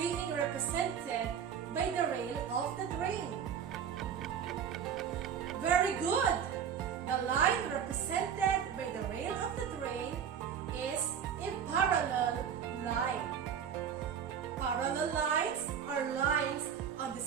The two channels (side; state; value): left; quieter; 8.0 dB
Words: represented by the rail of the train? Very good! The line represented by the rail of the train is a parallel line. Parallel lines are lines on the